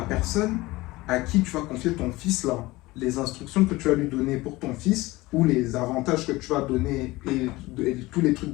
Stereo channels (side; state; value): right; quieter; 20.2 dB